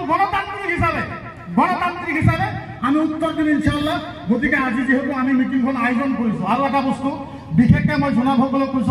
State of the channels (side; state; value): both; identical; correlation 1.00